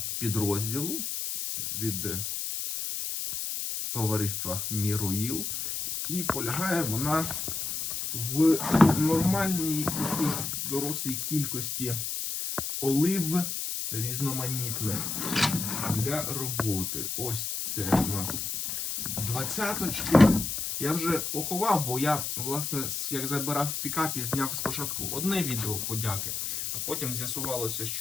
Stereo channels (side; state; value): left; noise; hiss, 3 dB below the sound